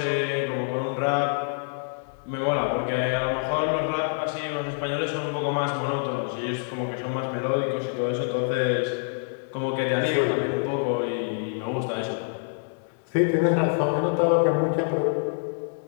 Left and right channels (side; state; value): right; silent; 61 dB below the other